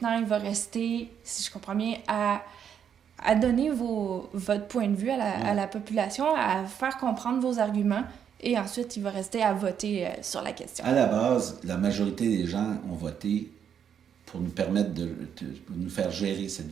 il va rester, si je comprends bien, à donner votre point de vue à la population, à faire comprendre vos arguments. Et ensuite, il va rester à voter sur la question. À la base, la majorité des gens ont voté pour nous permettre de nous faire gérer cette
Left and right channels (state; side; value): quieter; left; 8.3 dB